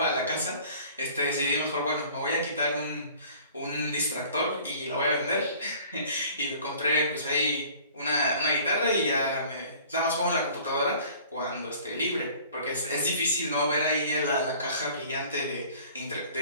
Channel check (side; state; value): both; inverted; correlation -0.50